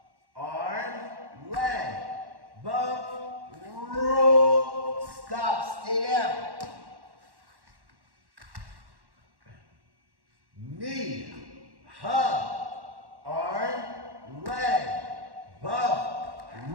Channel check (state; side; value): late; left; 1.1 ms